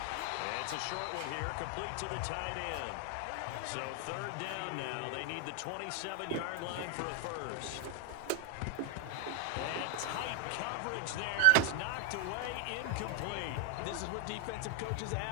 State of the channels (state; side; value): different; both; correlation 0.00